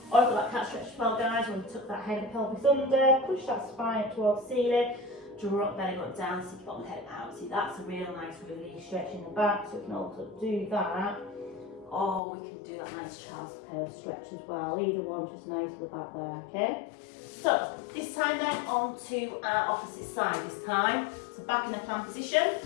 Or you've got that cat stretch as well, guys, when we tuck that head and pelvis under, push that spine up towards the ceiling, draw up belly button down, stick your bottom head out. See, that's a real nice release stretch in the back, so we can also do that. Or we can do that nice child's pose stretch as well. Either one, just nice with that there, okay? So, this time then, on to our opposite side this time. So back in the plank position,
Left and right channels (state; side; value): drops out; right; at 12.2 s